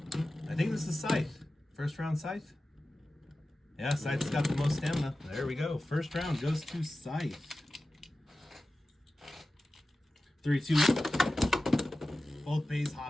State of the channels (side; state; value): both; normal; correlation 0.95